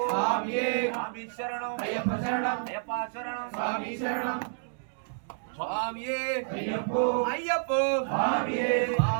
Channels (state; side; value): silent; left; digital silence